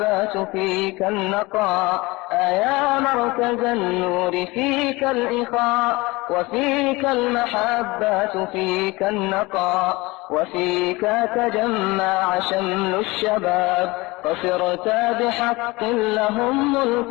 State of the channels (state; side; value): quieter; right; 22.5 dB